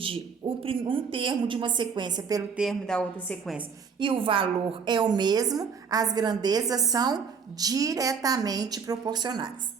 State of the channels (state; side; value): quieter; left; 6.0 dB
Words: um termo de uma sequência pelo termo da outra sequência e o valor é o mesmo, as grandezas são diretamente proporcionais.